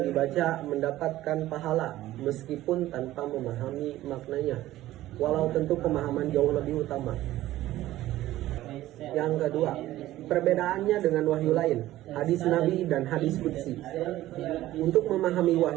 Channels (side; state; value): left; quieter; 15.2 dB